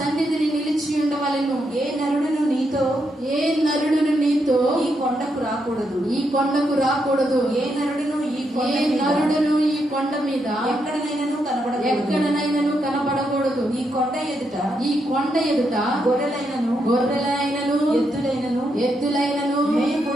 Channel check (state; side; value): normal; both; correlation 0.80